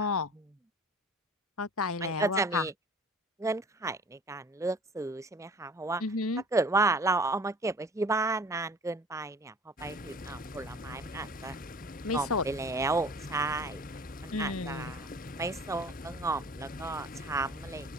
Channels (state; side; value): normal; both; correlation 0.45